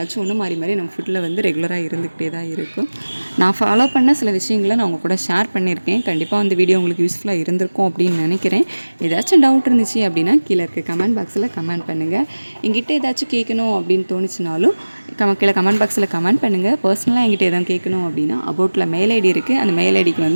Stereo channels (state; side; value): inverted; both; correlation -1.00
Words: ஒன்று மாறி நம்ம ஃபுட்டில் வந்து ரெகுலராக இருந்துக்கிட்டே தான் இருக்கும். நான் ஃபாலோ பண்ண சில விஷயங்களை நான் உங்கள் கூட ஷேர் பண்ணியிருக்கேன். கண்டிப்பாக அந்த வீடியோ உங்களுக்கு யூஸ்ஃபுல்லாக இருந்திருக்கும் அப்படின்னு நினைக்கிறேன். ஏதாச்சும் டவுட் இருந்துச்சு அப்படின்னா கீழே இருக்க கமெண்ட் பாக்ஸில் கமெண்ட் பண்ணுங்கள். என்கிட்ட ஏதாச்சும் கேட்கணும் அப்படின்னு தோணுச்சுனாலும் கீழே கமெண்ட் பாக்ஸில் கமெண்ட் பண்ணுங்கள். பர்சனலாக என்கிட்ட எதாவது கேட்கணும் அப்படின்னா அபவுட்டில் மெயில் ஐடி இருக்குது. அந்த மெயில் ஐடிக்கு